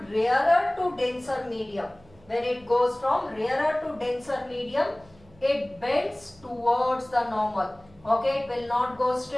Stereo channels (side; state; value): right; noise; hum, 27 dB below the sound